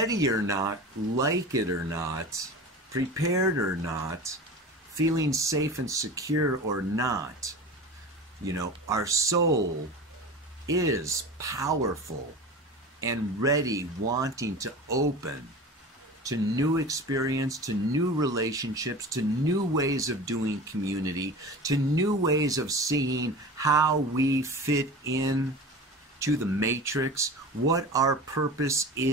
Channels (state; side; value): normal; both; correlation 0.34